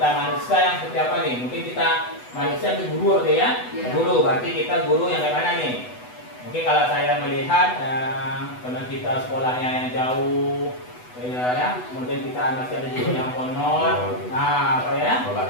manusia yang seperti apa nih? Mungkin kita manusia itu guru ya? Ya. Guru, berarti kita guru yang kayak mana nih? Mungkin kalau saya melihat, karena kita sekolahnya yang jauh, ya, kemudian kita masih ada juga yang honor, apa ya?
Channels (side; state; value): right; late; 8.1 ms